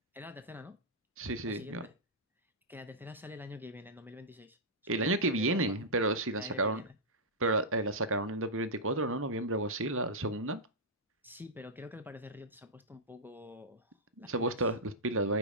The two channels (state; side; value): normal; both; correlation -0.10